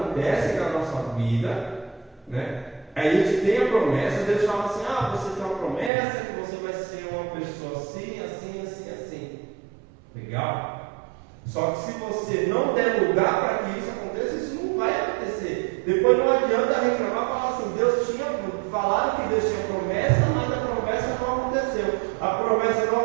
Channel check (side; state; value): left; drops out; at 5.9 s